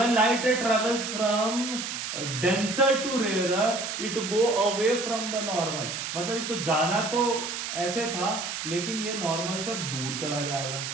light ray travels from denser to rarer it go away from the normal. मतलब इसको जाना तो ऐसे था लेकिन ये नॉर्मल से अब दूर चला जाएगा।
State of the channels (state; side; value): noise; right; hiss, 5 dB below the sound